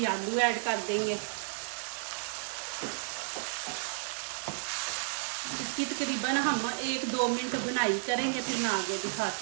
आलू ऐड कर देंगे। इसकी तकरीबन हम 1-2 मिनट भुनाई करेंगे, फिर मैं आगे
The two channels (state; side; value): silent; left; digital silence